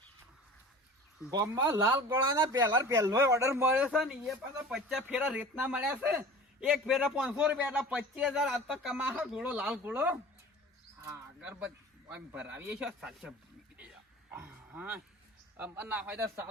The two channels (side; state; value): both; normal; correlation 0.40